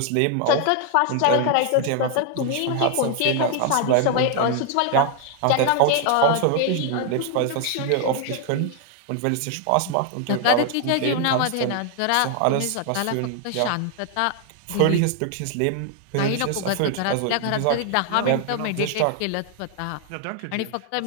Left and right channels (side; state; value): both; different; correlation 0.01